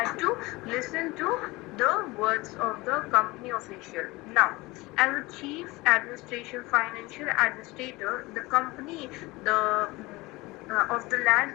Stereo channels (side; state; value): right; quieter; 21.9 dB